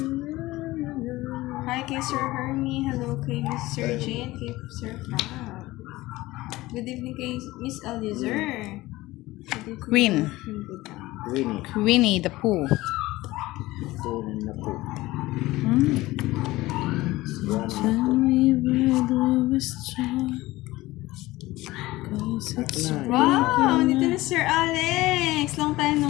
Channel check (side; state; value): right; quieter; 18.6 dB